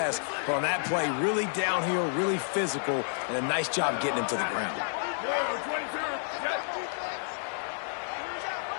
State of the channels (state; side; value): silent; right; digital silence